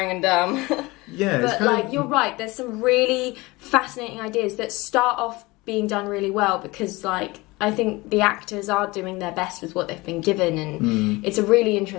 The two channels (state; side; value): quieter; right; 22.4 dB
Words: and dumb. But like, you're right, there's some really fascinating ideas that start off being done really well, because like I think the actors are doing their best with what they've been given, and it's a really